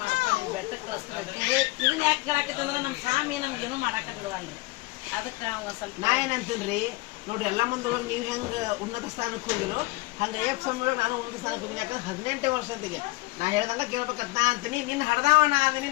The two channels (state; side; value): quieter; right; 21.9 dB